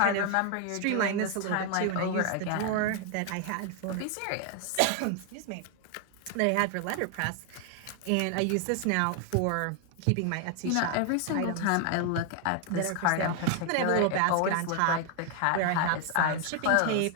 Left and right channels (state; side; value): different; both; correlation 0.00